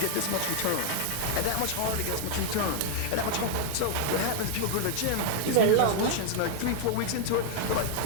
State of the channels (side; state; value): both; different; correlation 0.00